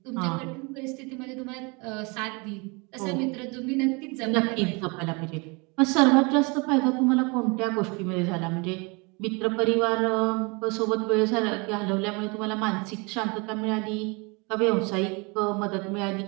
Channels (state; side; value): quieter; left; 29.2 dB